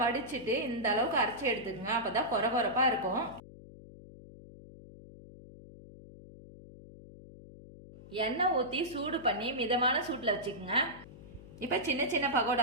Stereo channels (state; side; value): noise; left; hum, 18 dB below the sound